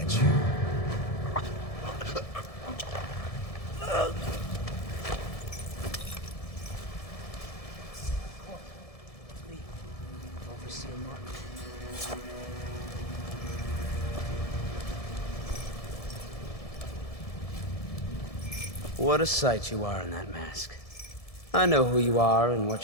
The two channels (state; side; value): late; right; 1.7 ms